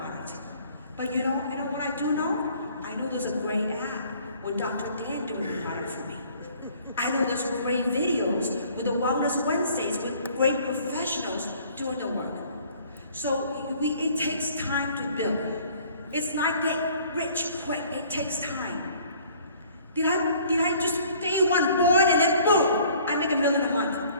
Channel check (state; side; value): inverted; both; correlation -0.55